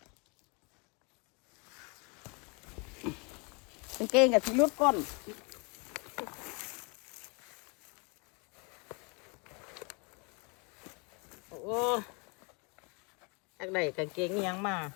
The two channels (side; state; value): right; quieter; 32.4 dB